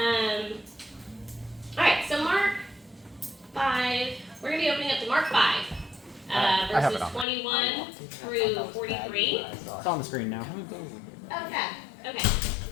All right, so Mark 5. We're going to be opening up to Mark 5, verses 21 through 43. It's on the screen now. Okay.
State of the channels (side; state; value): right; drops out; at 7.2 s